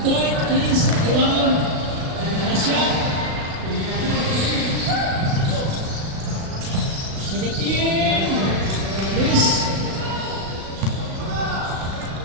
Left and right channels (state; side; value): late; left; 36 ms